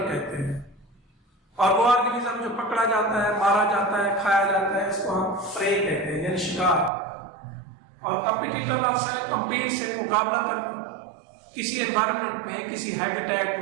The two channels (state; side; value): drops out; left; at 6.9 s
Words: कहते हैं। और वो ऑर्गेनिज्म जो पकड़ा जाता है, मारा जाता है, खाया जाता है, इसको हम प्रे कहते हैं, यानी शिकार। और कॉम्पिटिटर लफ्ज़ है कम्पीट से, मुकाबला करना। किसी एनवायरनमेंट में, किसी हैबिटेट